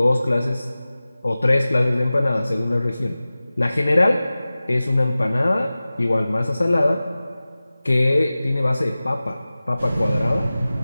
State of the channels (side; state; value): both; inverted; correlation -0.97